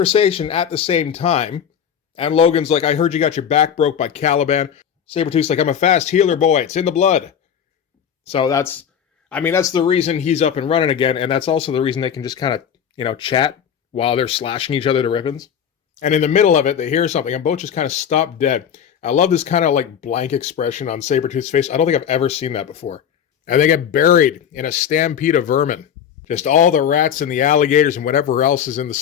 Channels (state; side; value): quieter; right; 8.4 dB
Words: at the same time. And Logan's like, I heard you got your back broke by Caliban. Sabretooth's like, I'm a fast healer, boy. It's in the blood. So that's the reason he's up and running again, and that's also the reason they can just kind of, chat while they're slashing each other to ribbons. And in the middle of it, they hear something, and both just kind of stop dead. I love this kind of like blank expression on Sabretooth's face. I don't think I've ever seen that before. And they get buried in a stampede of vermin. Just all the rats and the alligators and whatever else is in the